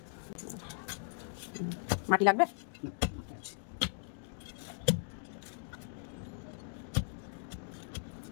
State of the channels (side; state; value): right; silent; digital silence